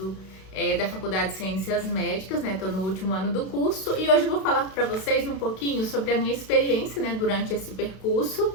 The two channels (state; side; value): late; right; 32 ms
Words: da Faculdade de Ciências Médicas, né? Estou no último ano do curso e hoje eu vou falar para vocês um pouquinho sobre a minha experiência, né, durante esse percurso